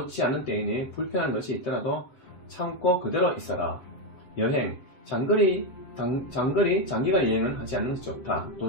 않은 때이니 불편한 것이 있더라도 참고 그대로 있어라. 여행. 장기간 여행은 하지 않는 것이 좋다.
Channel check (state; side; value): late; right; 7.6 ms